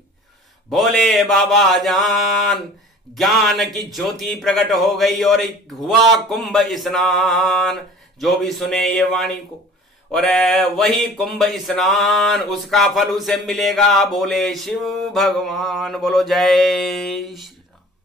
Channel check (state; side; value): normal; both; correlation 0.46